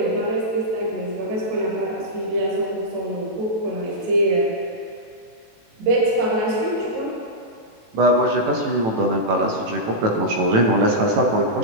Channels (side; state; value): left; late; 18 ms